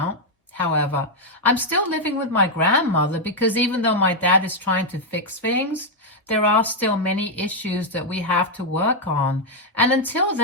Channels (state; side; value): normal; both; correlation -0.01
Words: However, I'm still living with my grandmother because even though my dad is trying to fix things, there are still many issues that we have to work on. And until